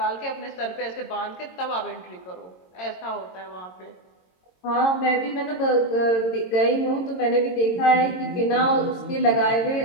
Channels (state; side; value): late; right; 22 ms